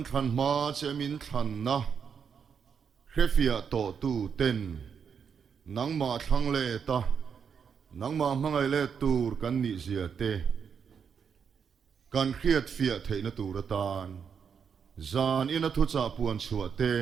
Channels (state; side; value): quieter; left; 6.8 dB